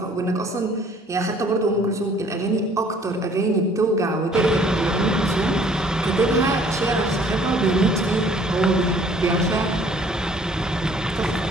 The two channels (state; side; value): normal; both; correlation 0.57